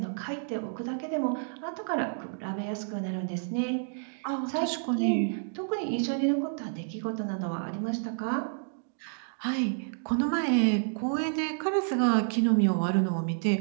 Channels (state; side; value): silent; left; digital silence